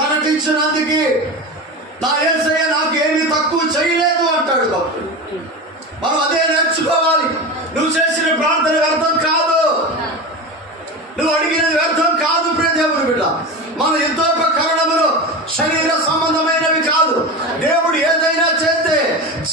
నా యేసయ్య నాకు ఏమీ తక్కువ చేయలేదు అంటాడు భక్తుడు. మనం అదే నేర్చుకోవాలి. నువ్వు చేసిన ప్రార్థన వ్యర్థం కాదు, నువ్వు అడిగినది వ్యర్థం కాదు. ప్రియ దేవుని బిడ్డ, మన యుద్ధోపకరణములు శరీర సంబంధమైనవి కాదు. దేవుడు ఏదైనా చేస్తే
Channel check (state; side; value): normal; both; correlation 0.25